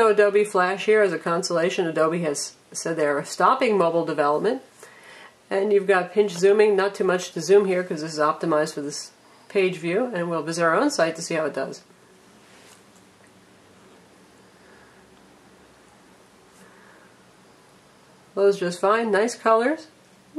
Adobe Flash here. As a consolation, Adobe has said they're stopping mobile development. And you've got pinch zooming. Not too much to zoom here because this is optimized for this page view. And we'll visit our own site to see how it does. Loads just fine. Nice colors. A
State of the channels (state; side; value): identical; both; correlation 1.00